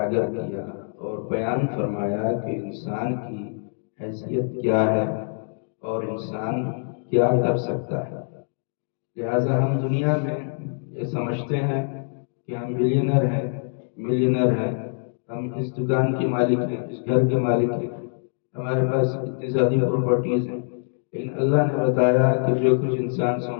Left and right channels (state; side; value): silent; right; digital silence